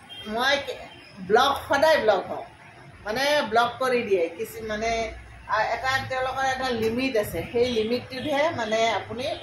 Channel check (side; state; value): both; identical; correlation 1.00